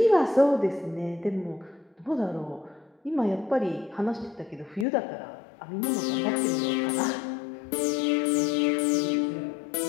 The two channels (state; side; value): drops out; right; at 4.9 s